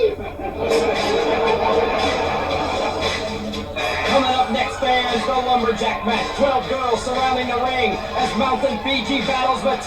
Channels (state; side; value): identical; both; correlation 1.00